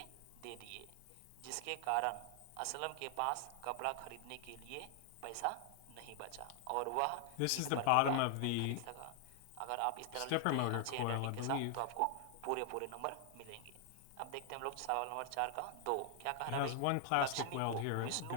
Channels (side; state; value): both; different; correlation 0.00